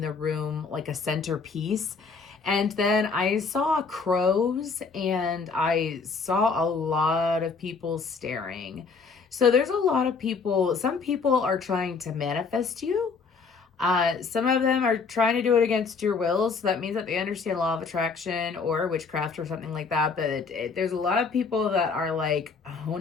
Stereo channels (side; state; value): right; quieter; 4.9 dB